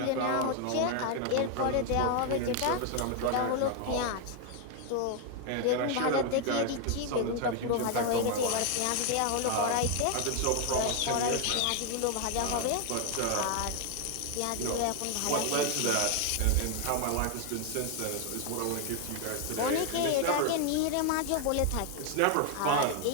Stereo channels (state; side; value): different; both; correlation 0.01